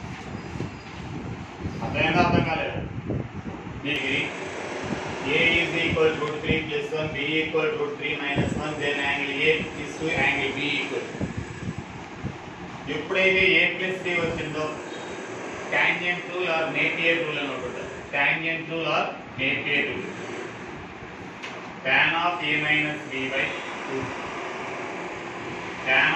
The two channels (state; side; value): identical; both; correlation 1.00